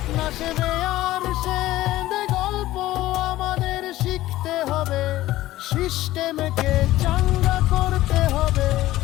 না সে বেয়ার, সে গল্প আমাদের শিখতে হবে। সিস্টেমকে চাঙ্গা করতে হবে,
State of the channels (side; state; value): right; quieter; 15.8 dB